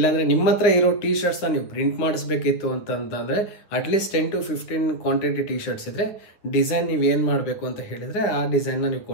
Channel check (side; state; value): right; late; 9.3 ms